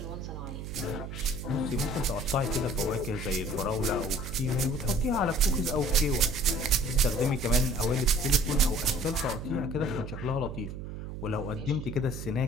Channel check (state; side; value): noise; right; hum, 8 dB below the sound